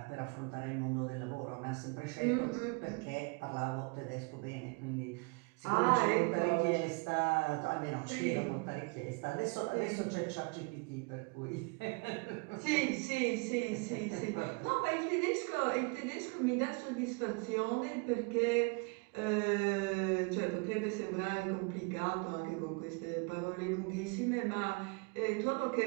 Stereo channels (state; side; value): quieter; left; 31.1 dB